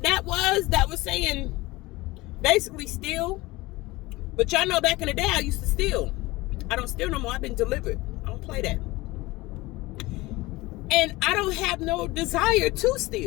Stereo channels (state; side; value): quieter; right; 20.7 dB